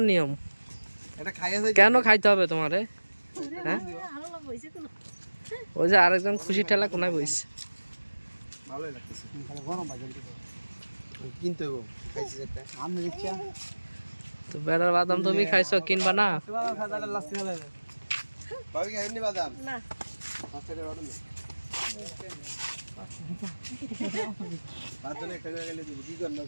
নিয়ম? কেন খাইতে হবে তোমারে? হ্যাঁ, ওই যে আরেকজন খুশি ঠেলা কোনায় বইছে। তো বেড়ার বাদাম তুমি খাইছো, কিনবা না?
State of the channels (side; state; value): both; inverted; correlation -1.00